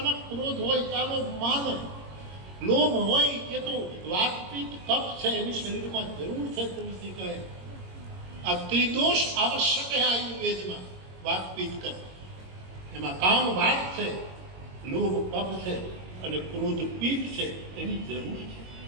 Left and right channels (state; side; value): late; left; 22 ms